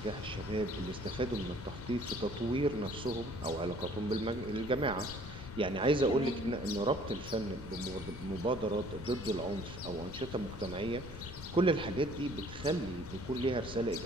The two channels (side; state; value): left; noise; rumble, 11 dB below the sound